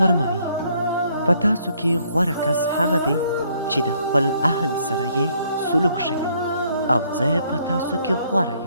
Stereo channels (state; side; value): inverted; both; correlation -0.67